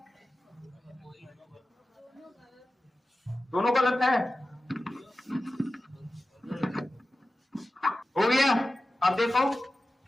दोनों गलत है, हो गया। अब देखो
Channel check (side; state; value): both; normal; correlation 0.95